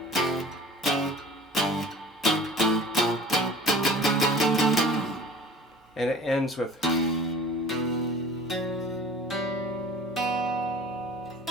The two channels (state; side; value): normal; both; correlation 0.43